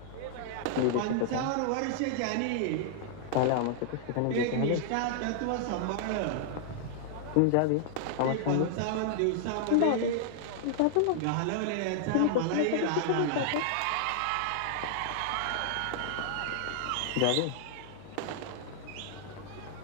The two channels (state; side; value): different; both; correlation -0.01